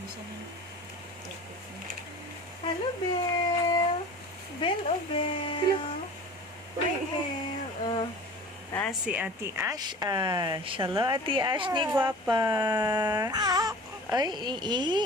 Hello, Belle. Belle, oh, Belle. Hi, Belle. Si Ate Ash. Hello, Ate Ash ni Guwapa.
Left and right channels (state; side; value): normal; both; correlation 0.40